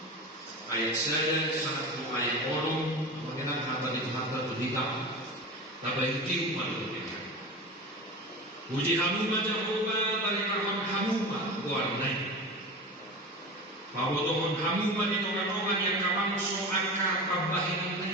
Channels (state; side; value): normal; both; correlation 0.29